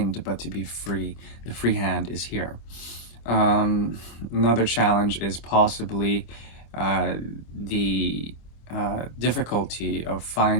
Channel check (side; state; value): right; late; 25 ms